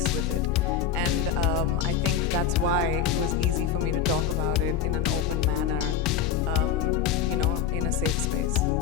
with it. And I think that's why it was easy for me to talk about it in an open manner, in a safe space.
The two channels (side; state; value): right; quieter; 7.8 dB